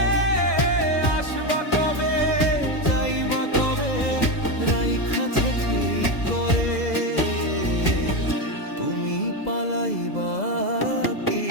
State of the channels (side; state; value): right; late; 2.0 ms